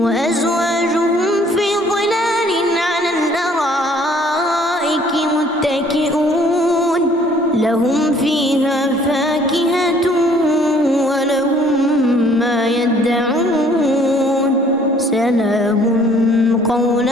وأزواجهم في ظلال على الأرائك متكئون لهم فيها فاكهة ولهم ما يدعون سلام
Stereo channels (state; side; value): normal; both; correlation 0.59